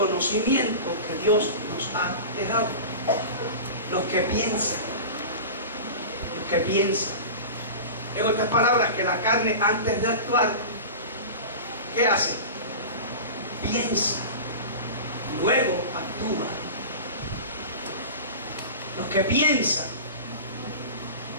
que Dios nos ha dejado. Los que piensan, en otras palabras, que la carne antes de actuar, ¿qué hace? Piensa, luego actúa. Los que piensan,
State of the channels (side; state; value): both; inverted; correlation -0.32